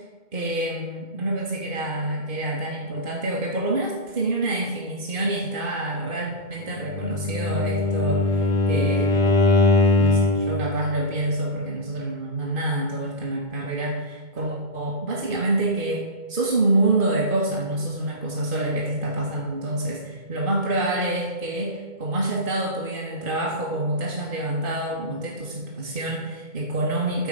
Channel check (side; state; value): left; late; 2.1 ms